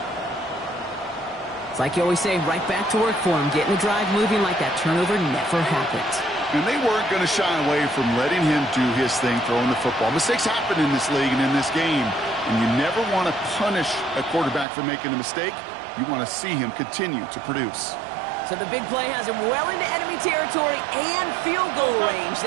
It's like you always say, right back to work for him. Getting the drive moving like that turnover never happened. And they weren't going to shy away from letting him do his thing, throwing the football. Mistakes happen in this league and in this game. And you never want to punish a quarterback for making a mistake. You want to see him continue to produce. So the big play has him well into enemy territory and field goal range.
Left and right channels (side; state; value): left; drops out; at 14.7 s